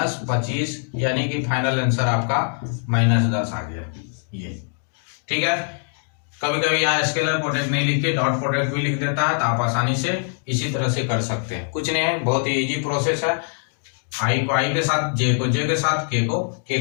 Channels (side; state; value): right; silent; 56 dB below the other